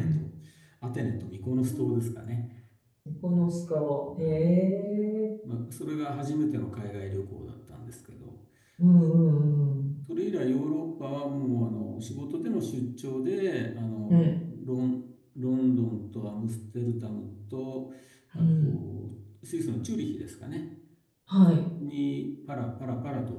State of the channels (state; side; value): identical; both; correlation 1.00